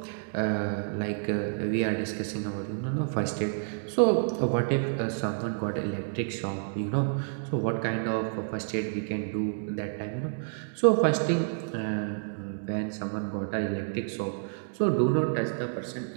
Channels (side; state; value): left; silent; digital silence